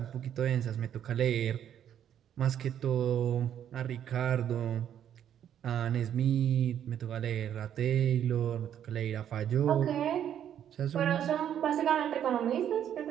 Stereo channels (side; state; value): left; quieter; 9.8 dB